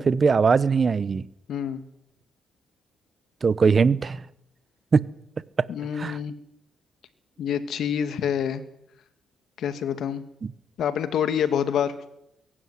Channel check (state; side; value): normal; both; correlation 0.78